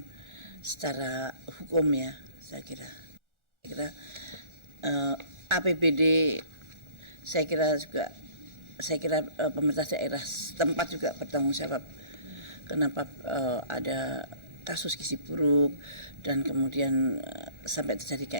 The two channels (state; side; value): late; left; 1.4 ms